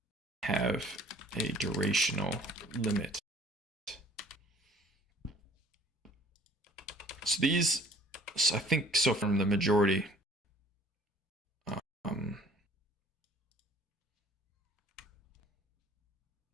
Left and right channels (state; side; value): normal; both; correlation 0.53